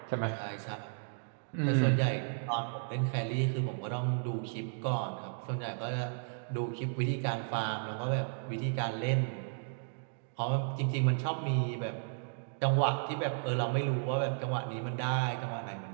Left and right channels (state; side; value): silent; left; digital silence